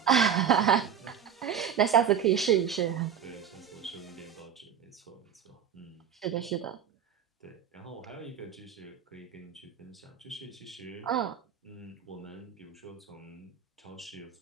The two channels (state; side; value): quieter; left; 8.3 dB